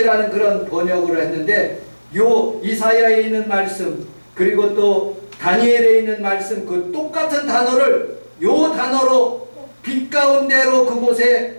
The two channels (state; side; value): inverted; both; correlation -1.00